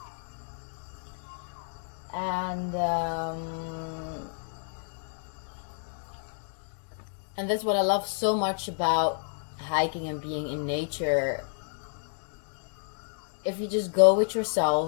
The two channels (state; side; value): silent; right; digital silence